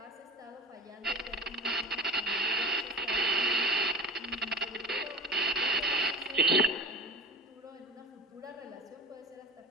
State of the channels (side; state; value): both; normal; correlation 0.33